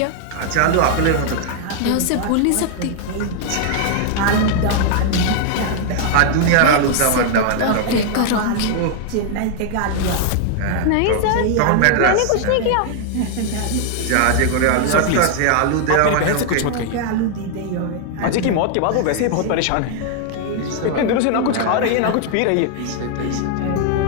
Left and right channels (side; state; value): both; different; correlation 0.00